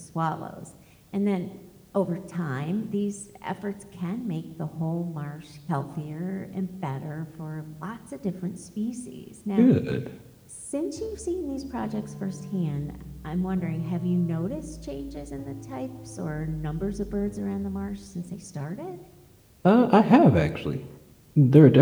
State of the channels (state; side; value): identical; both; correlation 1.00